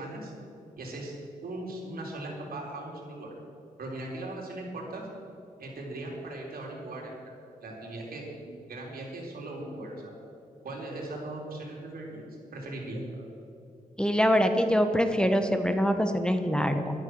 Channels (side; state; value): both; normal; correlation 0.85